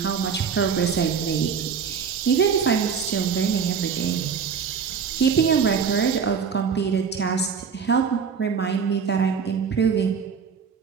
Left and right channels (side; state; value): left; quieter; 6.4 dB